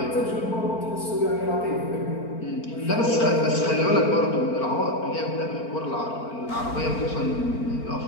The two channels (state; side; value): late; right; 4.4 ms